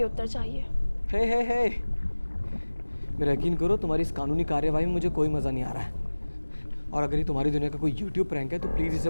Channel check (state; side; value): inverted; both; correlation -1.00